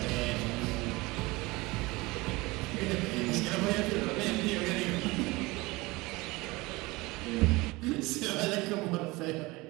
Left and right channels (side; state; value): left; quieter; 22.5 dB